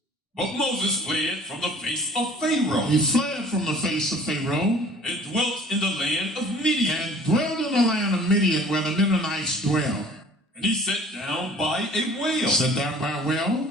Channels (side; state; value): both; normal; correlation 0.50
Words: But Moses fled from the face of Pharaoh. He fled from the face of Pharaoh. And dwelt in the land of Midian. And dwelled in the land of Midian, where the Midianites dwell. And he sat down by a well. Sat down by a well.